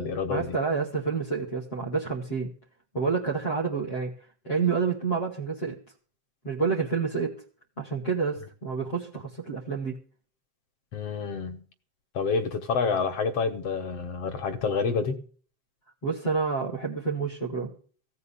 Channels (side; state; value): right; late; 7.6 ms